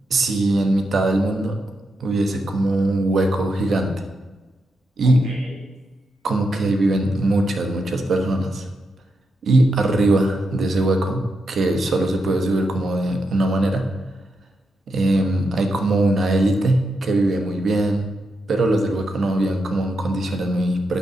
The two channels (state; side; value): normal; both; correlation 0.84